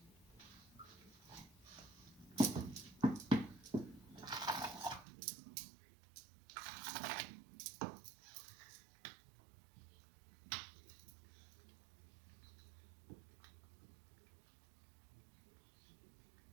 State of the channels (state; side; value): drops out; left; at 5.1 s